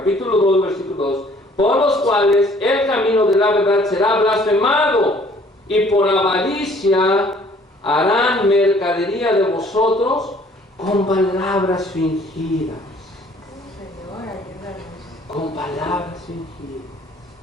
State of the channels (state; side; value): normal; both; correlation 0.57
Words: 2, versículo 2. Por los cuales el camino de la verdad será blasfemado, y por avaricia harán mercadería de vosotros con palabras fingidas. Con palabras fingidas.